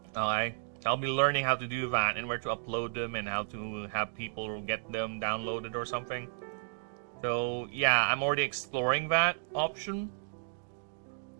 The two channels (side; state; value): left; silent; digital silence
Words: Alright, so I'll be learning how to do that and where to upload them and how to have people get them downloaded or something. So yeah, I'm already exploring that option.